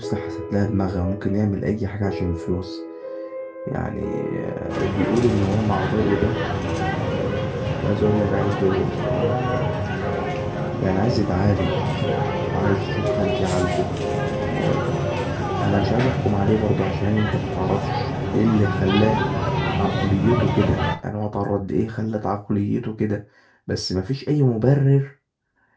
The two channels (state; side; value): identical; both; correlation 1.00